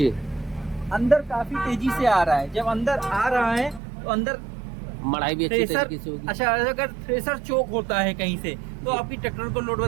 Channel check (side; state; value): left; drops out; at 3.8 s